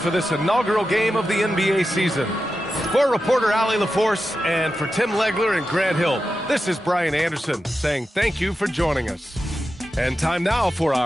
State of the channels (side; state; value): both; normal; correlation 0.91